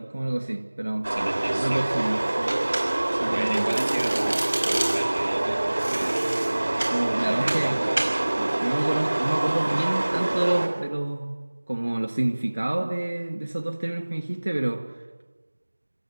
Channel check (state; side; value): inverted; both; correlation -1.00